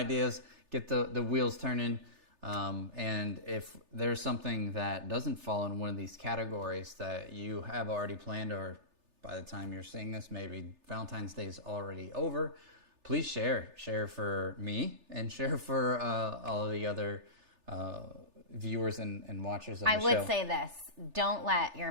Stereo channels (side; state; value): left; late; 3.3 ms